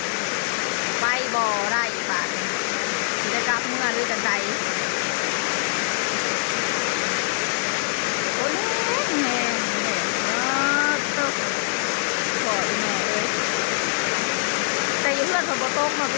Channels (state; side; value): silent; right; digital silence